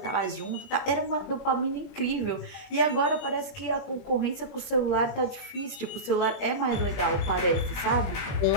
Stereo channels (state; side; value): late; right; 21 ms